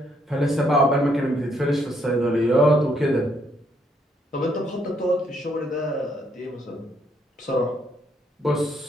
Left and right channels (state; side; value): normal; both; correlation 0.72